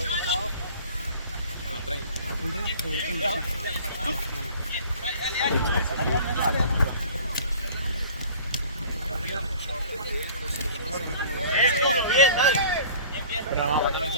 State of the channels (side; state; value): both; inverted; correlation -0.47